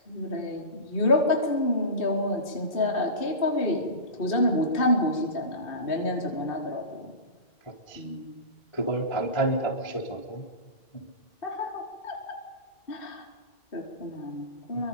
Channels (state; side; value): late; right; 2.6 ms